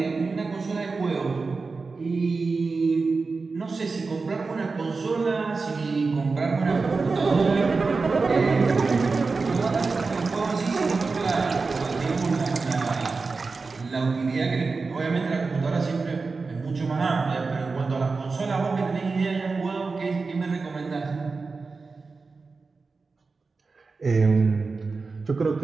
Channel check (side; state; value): left; quieter; 4.2 dB